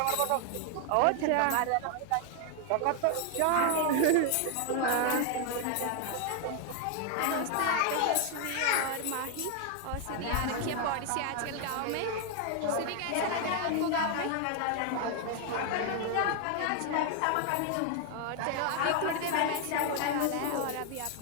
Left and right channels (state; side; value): different; both; correlation 0.00